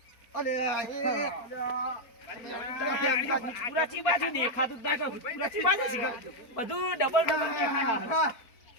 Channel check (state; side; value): late; right; 4.4 ms